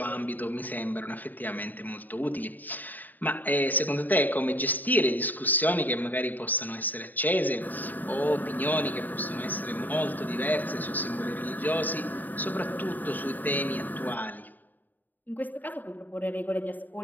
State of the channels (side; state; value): right; late; 0.086 ms